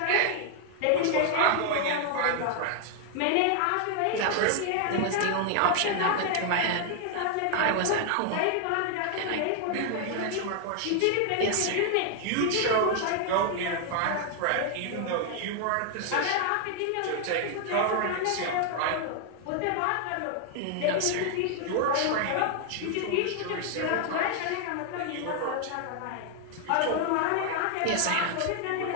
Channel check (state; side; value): different; both; correlation 0.00